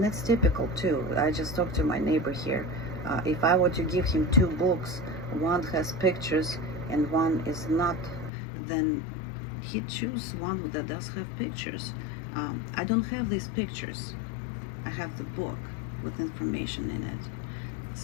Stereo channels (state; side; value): drops out; right; at 8.3 s